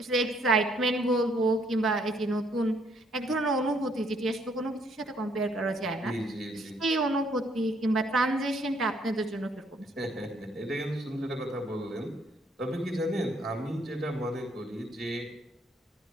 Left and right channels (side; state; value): both; normal; correlation 0.67